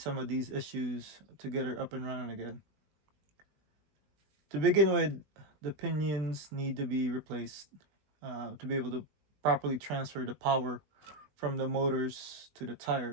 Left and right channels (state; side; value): late; left; 20 ms